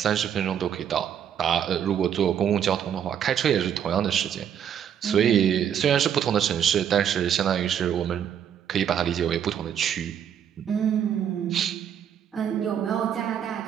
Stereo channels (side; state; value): left; quieter; 9.0 dB